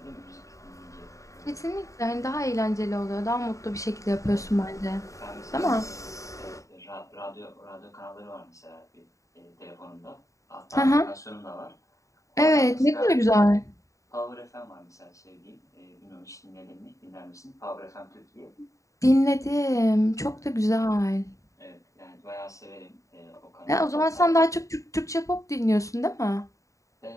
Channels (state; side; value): late; right; 0.16 ms